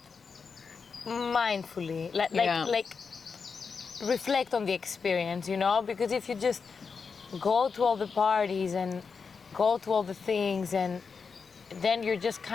mindfully, like reflect on the experience, you know? Because if you just go to all the parties and go to all the things, and then you're just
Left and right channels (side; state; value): right; quieter; 5.4 dB